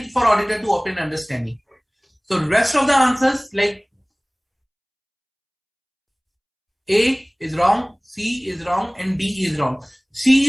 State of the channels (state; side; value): identical; both; correlation 1.00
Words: for auditor to obtain understanding. So rest of the answers like A is wrong, C is wrong, and D is wrong.